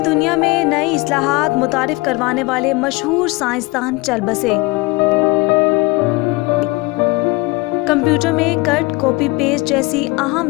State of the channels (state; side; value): quieter; right; 23.5 dB